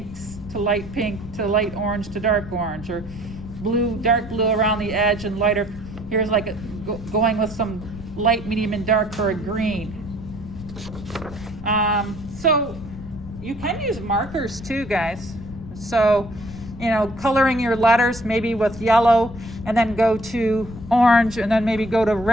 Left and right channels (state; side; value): noise; left; rumble, 13 dB below the sound